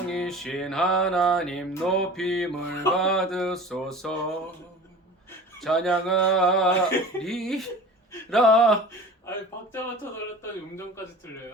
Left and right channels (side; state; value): both; normal; correlation 0.39